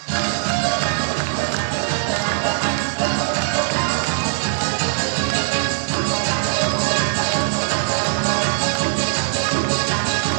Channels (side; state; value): left; silent; 63 dB below the other